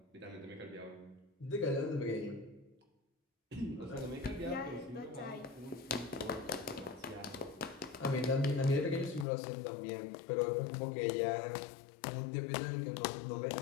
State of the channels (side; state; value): right; drops out; at 9.2 s